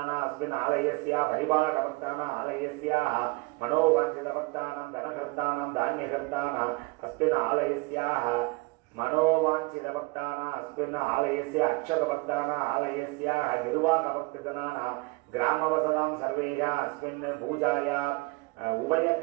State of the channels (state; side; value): quieter; left; 26.1 dB